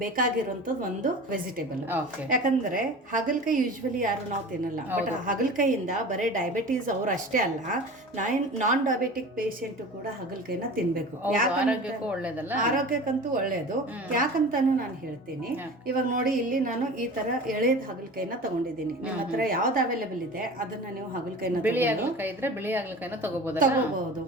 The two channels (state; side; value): normal; both; correlation 0.36